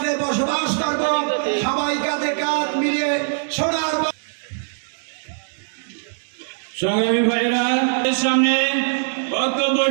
বসবাস করব, সবাই কাঁধে কাঁধ মিলিয়ে সোনার। সংগ্রামী ভাইরা, সামনে বক্তব্য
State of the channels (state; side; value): silent; left; digital silence